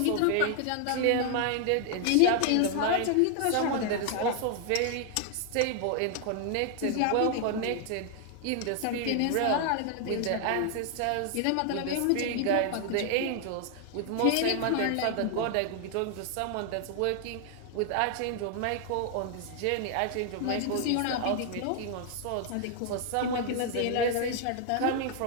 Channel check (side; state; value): both; different; correlation 0.00